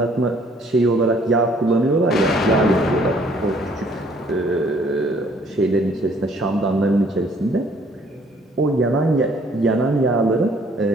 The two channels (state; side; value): normal; both; correlation 0.61